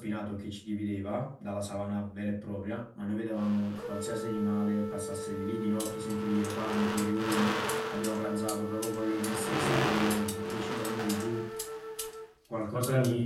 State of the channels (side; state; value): both; identical; correlation 1.00